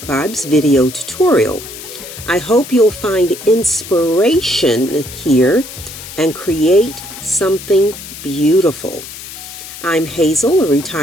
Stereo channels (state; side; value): noise; left; hiss, 13 dB below the sound